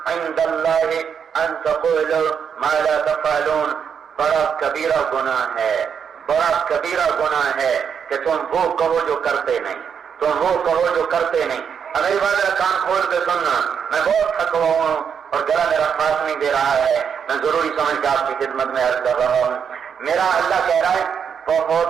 عند اللہ ان تقولوا ما لا تفعلون, بڑا کبیرہ گناہ ہے, بڑا کبیرہ گناہ ہے کہ تم وہ کہو جو کرتے نہیں, تم وہ کہو جو کرتے نہیں. میری بات کان کھول کے سننا, میں بہت تھکا ہوا ہوں اور گلا میرا ساتھ نہیں دے رہا ہے, میں ضروری سمجھ کے آپ کی خدمت میں عرض کر رہا ہوں. میرا اللہ کہہ رہا ہے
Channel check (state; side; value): quieter; left; 7.3 dB